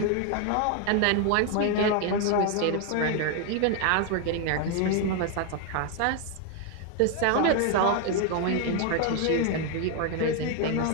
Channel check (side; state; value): both; different; correlation 0.01